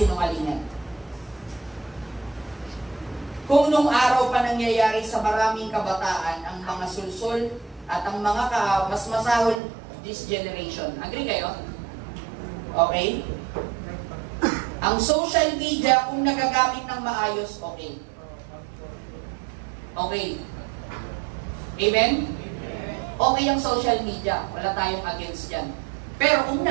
Kung nung araw pa nangyayari sa maraming kabataan ang mga sulsul at ang mga mas masahol this generation. Agree kayo? Okay? Ang social media, kung nagagamit ng maayos, okay. Okay. Amen? Okay ang social media. Wala tayong against dyan. Pero kung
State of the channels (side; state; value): left; drops out; at 9.6 s